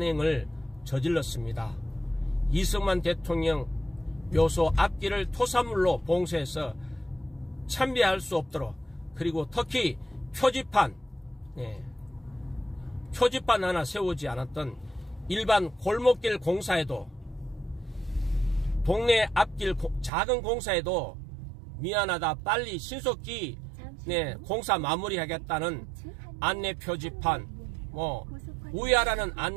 저질렀습니다. 이승만 대통령 묘소 앞길을 토사물로 봉쇄해서 참배할 수 없도록, 그리고 특히 표지판, 네, 표지판 하나 세우지 않았던 일반 골목길 공사에도, 동네 앞길 작은 공사에도 미안하다, 빨리 신속히, 네, 공사 마무리하겠다는 안내 표지판, 뭐 우회하라는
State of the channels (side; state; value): left; drops out; at 20.1 s